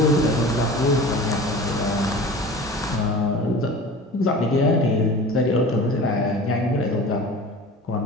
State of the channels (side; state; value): both; normal; correlation 0.38